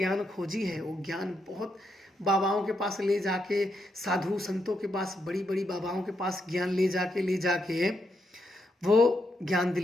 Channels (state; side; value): normal; both; correlation 0.80